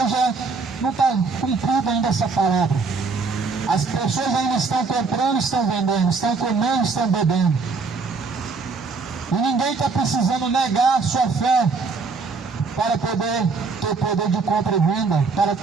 não está cumprida ainda essa palavra. As pessoas ainda estão comprando, estão vendendo, estão comendo, estão bebendo. E ninguém está precisando negar a sua fé para poder ter poder de compra e venda, para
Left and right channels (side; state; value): left; quieter; 4.4 dB